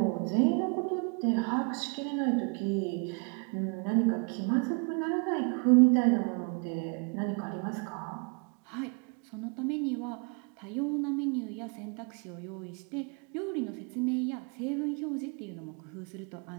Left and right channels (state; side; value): quieter; left; 35.1 dB